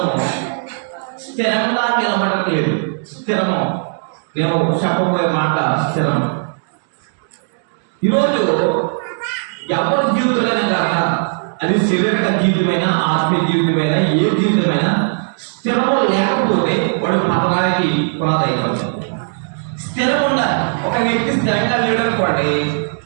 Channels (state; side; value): silent; left; digital silence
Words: స్థిరంగా నిలబడలేదు. స్థిరము, నేను చెప్పబోయే మాట స్థిరము. ఈరోజు ఎవరి జీవితంలోనే కాక అది శారీరక జీవితమైనా ఆత్మీయ జీవితమైనా ఏ జీవితమైనా స్థిరము లేకపోతే వాడు పతనానికి పునాదైపోతుంది. స్థిరం ఉండాలి. ఒక వ్యక్తి స్థిరంగా లేడనుకోండి,